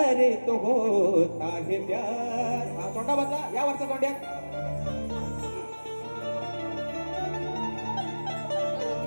तो होता है प्यार. तोंडा बदला या वरचा तोंड्यात.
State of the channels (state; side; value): inverted; both; correlation -1.00